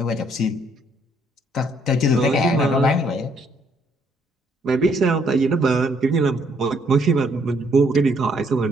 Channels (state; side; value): normal; both; correlation 0.68